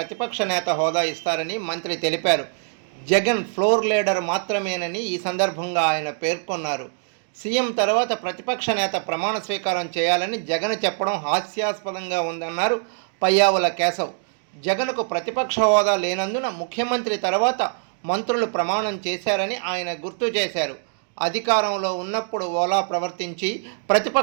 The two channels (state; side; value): silent; left; digital silence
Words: నేత హోదా ఇస్తారని మంత్రి తెలిపారు. జగన్ ఫ్లోర్ లీడర్ మాత్రమేనని ఈ సందర్భంగా ఆయన పేర్కొన్నారు. సీఎం తర్వాత ప్రతిపక్ష నేత ప్రమాణ స్వీకారం చేయాలని జగన్ చెప్పడం హాస్యాస్పదంగా ఉందన్నారు పయ్యావుల కేశవ్. జగన్కు ప్రతిపక్ష హోదా లేనందున ముఖ్యమంత్రి తర్వాత మంత్రులు ప్రమాణం చేశారని ఆయన గుర్తు చేశారు. అధికారంలో ఉన్నప్పుడు ఓలా ప్రవర్తించి